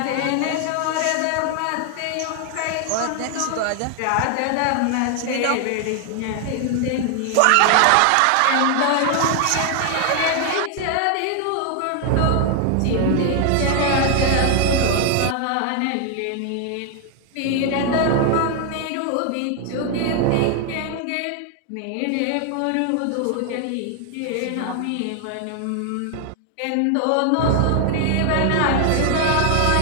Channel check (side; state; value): both; different; correlation 0.00